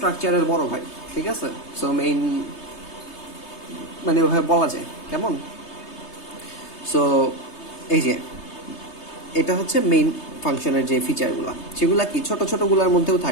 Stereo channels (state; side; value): late; right; 3.3 ms